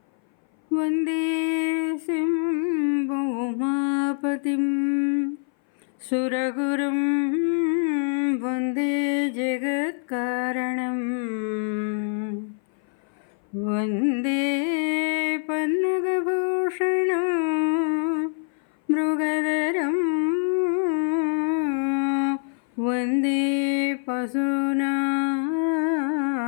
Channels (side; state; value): right; silent; 58 dB below the other